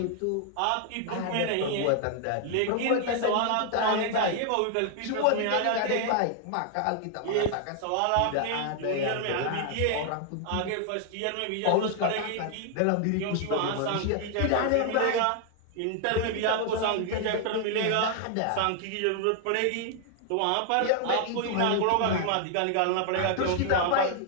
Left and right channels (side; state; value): both; different; correlation 0.00